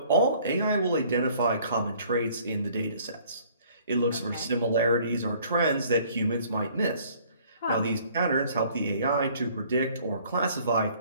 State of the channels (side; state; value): both; inverted; correlation -0.57